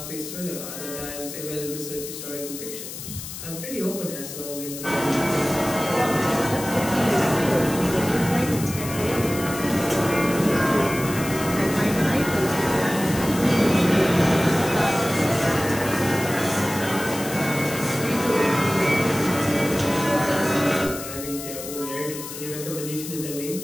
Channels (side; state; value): left; noise; hiss, 10 dB below the sound